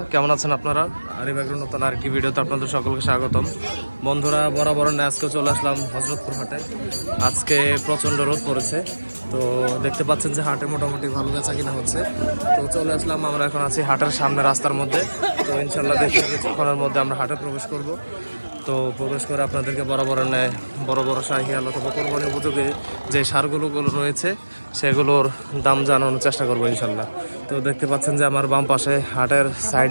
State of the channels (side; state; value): both; inverted; correlation -1.00